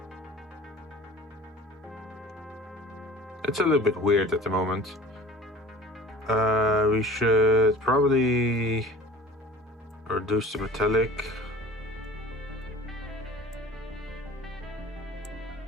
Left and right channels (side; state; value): both; normal; correlation 0.43